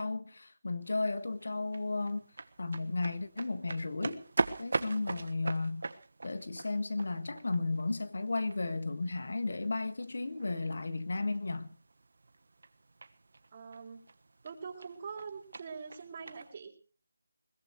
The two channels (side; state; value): both; inverted; correlation -0.95